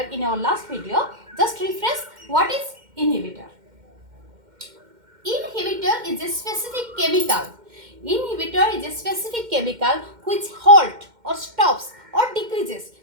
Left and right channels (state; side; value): late; left; 2.1 ms